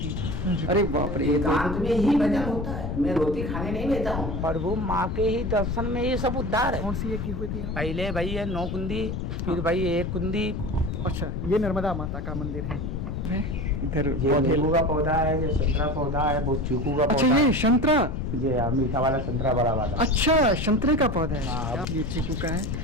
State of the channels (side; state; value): left; noise; rumble, 4 dB below the sound